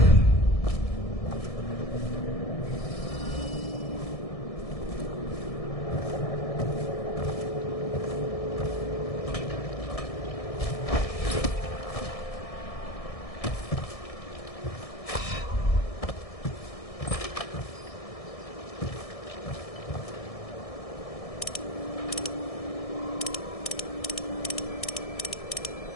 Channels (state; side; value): late; right; 1.6 ms